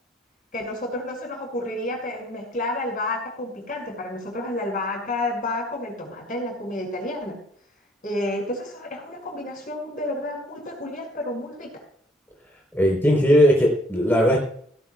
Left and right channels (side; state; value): both; normal; correlation 0.61